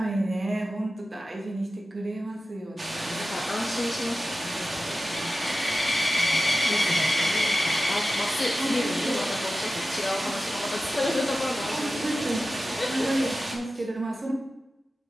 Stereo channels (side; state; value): both; normal; correlation 0.94